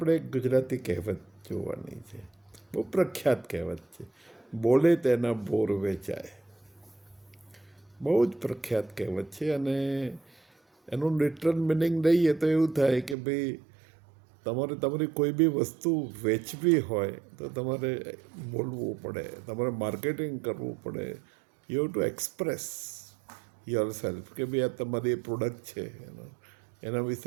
એક ગુજરાતી કહેવત જોવાની છે. બહુ પ્રખ્યાત કહેવત છે, બોલે તેના બોર વેચાય. બહુ જ પ્રખ્યાત કહેવત છે અને એનું લિટરલ મિનિંગ લઈએ તો એવું થાય કે ભાઈ તમારે તમારી કોઈ બી વસ્તુ વેચવી હોય તો તમારે બોલવું પડે, તમારે માર્કેટિંગ કરવું પડે. You have to express your self કે ભાઈ આ તમારી પ્રોડક્ટ છે, એના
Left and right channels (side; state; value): left; drops out; at 13.2 s